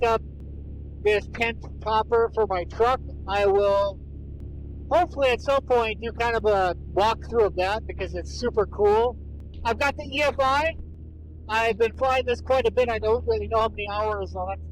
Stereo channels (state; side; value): identical; both; correlation 1.00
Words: up this tent topper for my truck. I will hopefully at some point do kind of a walkthrough of that because it's super cool. I've got the EFI. I've been flying this quite a bit. I don't really know how many hours. I'll have to